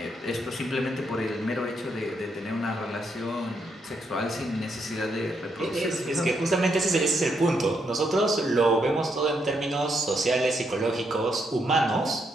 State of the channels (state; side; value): normal; both; correlation 0.77